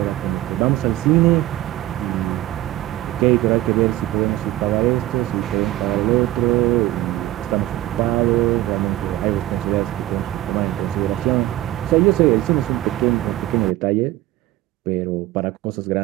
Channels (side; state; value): left; quieter; 15.8 dB